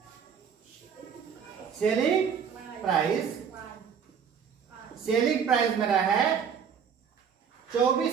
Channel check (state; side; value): quieter; left; 7.2 dB